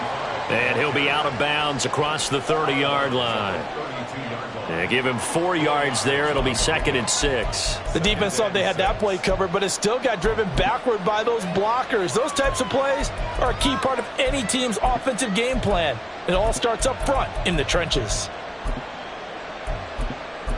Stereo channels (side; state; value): both; identical; correlation 1.00